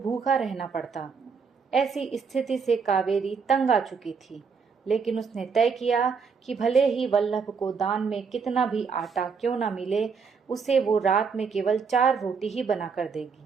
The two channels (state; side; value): quieter; left; 5.6 dB